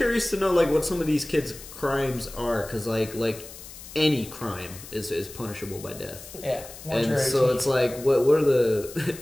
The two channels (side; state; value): left; noise; hiss, 15 dB below the sound